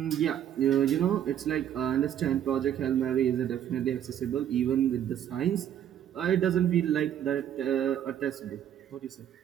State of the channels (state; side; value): quieter; left; 10.2 dB